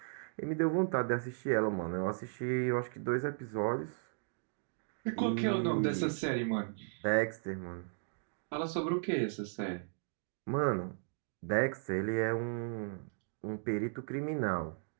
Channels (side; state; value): left; silent; digital silence